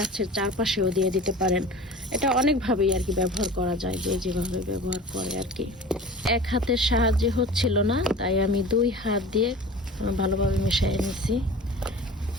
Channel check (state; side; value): normal; both; correlation 0.39